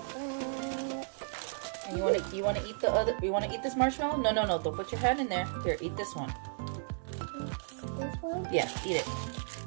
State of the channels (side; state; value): left; silent; digital silence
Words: And you want to eat the other? You want to eat this marshmallow? No. Don't put your hand in there. Here, eat this one. This one? Yeah, eat it.